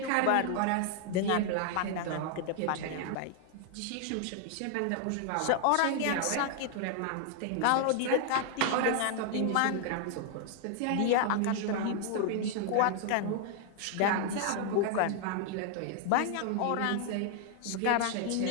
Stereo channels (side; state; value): both; different; correlation 0.00